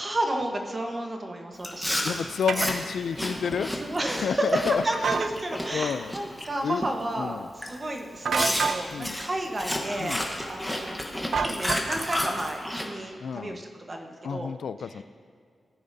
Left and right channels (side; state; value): both; normal; correlation 0.87